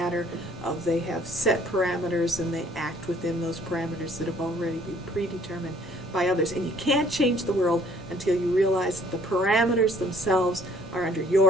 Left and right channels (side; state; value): both; normal; correlation 0.59